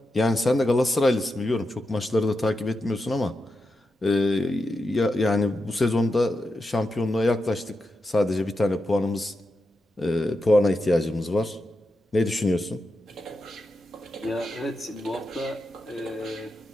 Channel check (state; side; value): normal; both; correlation 0.88